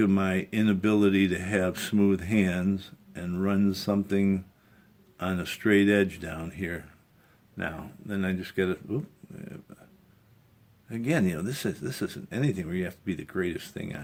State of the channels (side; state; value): both; identical; correlation 1.00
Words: my inability to have smooth hands and run something on a straight edge down here. Now, then I just got to, again, you know, this isn't anything where you have to be the greatest thing